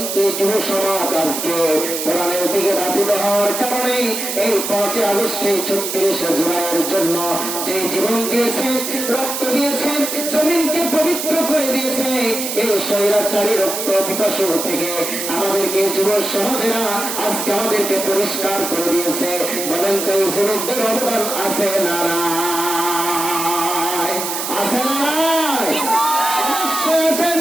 যুব সমাজ আজকে কোরআনের দিকে ধাবিত হওয়ার কারণে এই 5 আগস্টে 36 জুলাইয়ের জন্য যে জীবন দিয়েছে, রক্ত দিয়েছে, জমিনকে পবিত্র করে দিয়েছে, এই স্বৈরাচারী রক্ত পিপাসু থেকে আমাদেরকে যুব সমাজেরা আজকে আমাদেরকে পরিষ্কার করে দিয়েছে। বলেন তো এই যুবকদের অবদান আছে না নাই? আছে না নাই? অবশ্যই আছেন।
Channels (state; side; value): noise; right; hiss, 4 dB below the sound